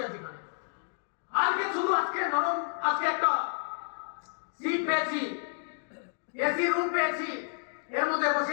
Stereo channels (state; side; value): silent; right; digital silence